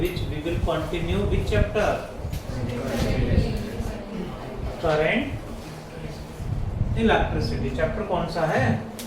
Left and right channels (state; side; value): identical; both; correlation 1.00